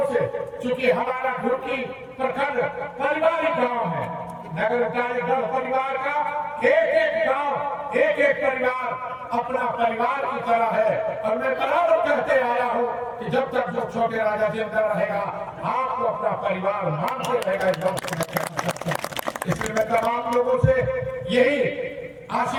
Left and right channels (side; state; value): both; identical; correlation 1.00